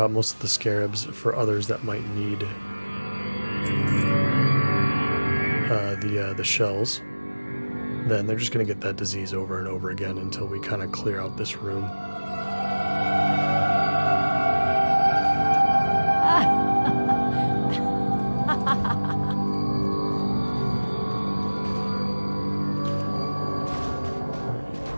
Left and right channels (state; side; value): inverted; both; correlation -1.00